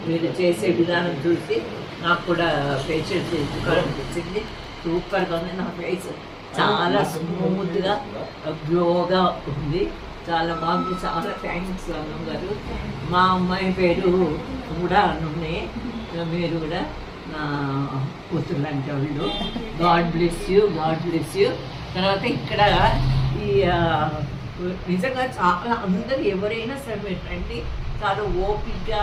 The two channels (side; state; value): both; identical; correlation 1.00